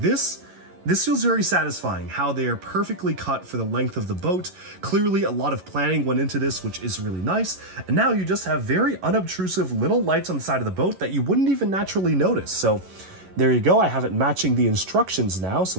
feels very satisfying, how they are perfectly cut for the length of the boat. Clearly a lot of planning went into this, which is really nice. And now you just have very unobtrusive little lights on the side of the boat that you wouldn't even naturally notice. So there you go. I have it matching the instructions now. So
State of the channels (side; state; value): left; late; 11 ms